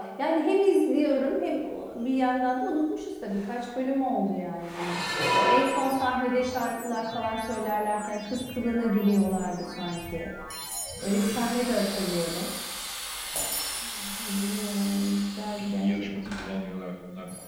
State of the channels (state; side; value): identical; both; correlation 1.00